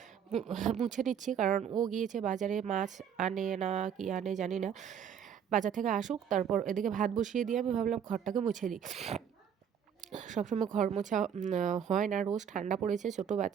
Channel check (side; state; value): left; quieter; 8.2 dB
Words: মুছে নিচ্ছি, কারণ ও গিয়েছে বাজারে, মাছ আনে না কি আনে জানি না। বাজার থেকে আসুক, তারপর এদিকে ভাত বসিয়ে দিয়ে আমি ভাবলাম ঘরটাকে মুছে দিই। সবসময় ঘর মোছা হয় না, রোজ ঠান্ডা পড়েছে, ছোটো